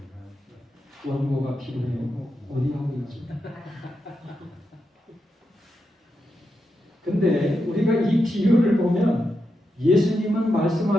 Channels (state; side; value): normal; both; correlation 0.86